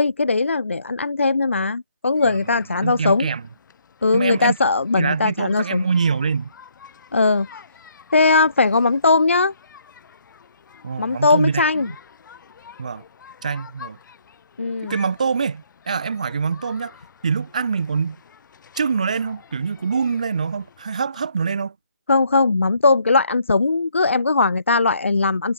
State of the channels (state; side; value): inverted; both; correlation -0.69